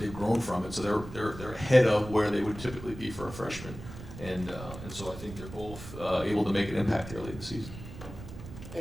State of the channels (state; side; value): noise; right; rumble, 12 dB below the sound